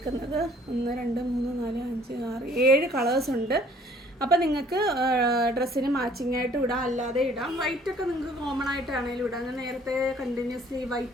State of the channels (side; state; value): both; normal; correlation 0.57